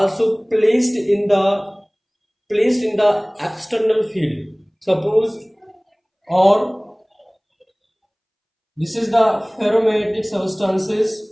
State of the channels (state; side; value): identical; both; correlation 1.00